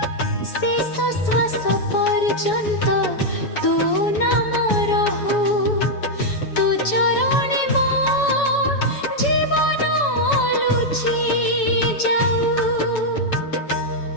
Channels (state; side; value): late; right; 7.0 ms